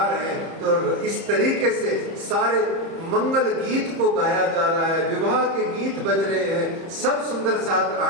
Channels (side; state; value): left; late; 30 ms